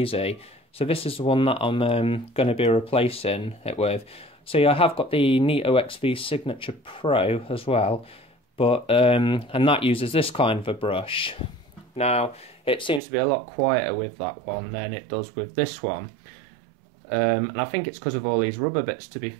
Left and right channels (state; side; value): drops out; left; at 13.0 s